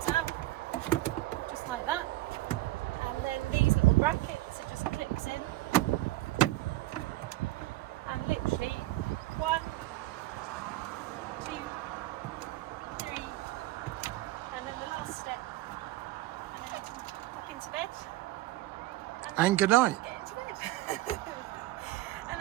out, just like that. And then these little brackets, it just clips in. And literally 1, 2, 3, and then the last step. And then you can pop into bed. And good night. Get into bed. And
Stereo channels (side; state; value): left; quieter; 17.4 dB